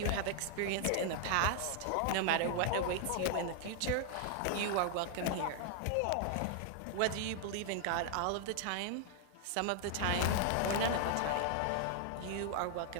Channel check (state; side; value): different; both; correlation 0.00